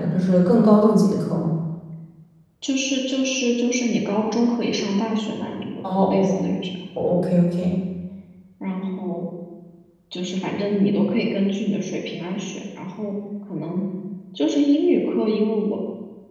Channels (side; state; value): both; identical; correlation 1.00